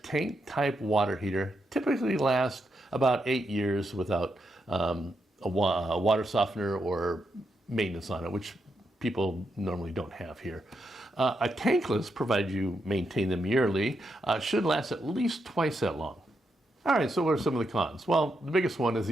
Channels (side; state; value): both; normal; correlation 0.82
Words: tank-type water heater typically lasts about 8 years without a water softener or maintenance on it, which people normally don't have here. A tankless, provided you maintain them yearly, should last at least twice that long. All right, so what are some of the cons? Well, the biggest one is